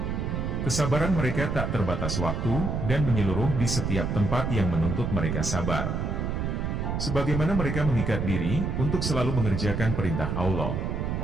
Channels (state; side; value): noise; right; rumble, 1 dB below the sound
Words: Kesabaran mereka tak terbatas waktu dan menyeluruh di setiap tempat yang menuntut mereka sabar. Sebagaimana mereka mengikat diri untuk selalu mengerjakan perintah Allah,